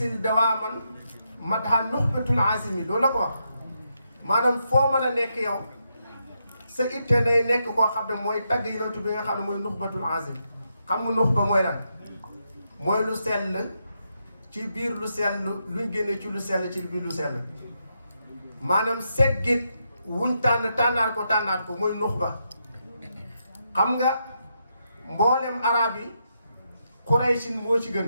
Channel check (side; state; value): both; inverted; correlation -0.82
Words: dawaaman madha nuxbatul azimi loolu la ko wax maanaam foo mën a nekk yow sa itte day nekk koo xam ne mooy tagg yonentu bi nga xam ne mooy nuxbatul azim xam nga nuxba mooy lan mooy lu sell ci biir lu sell luñ génne ci lu sell ci biir lu sell maanaam seggit wuñ tànnaat ko mooy nuxba xam nga mboolem arab yi Quraysin moo ci